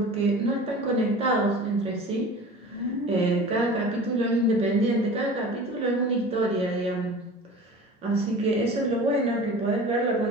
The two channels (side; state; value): both; normal; correlation 0.38